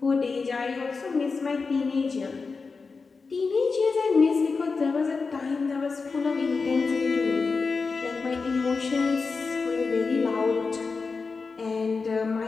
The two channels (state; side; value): quieter; right; 4.5 dB